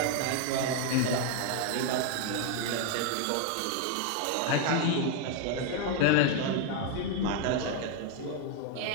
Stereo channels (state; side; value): different; both; correlation 0.00